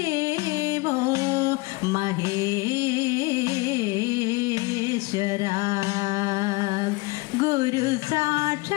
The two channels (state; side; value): quieter; right; 24.2 dB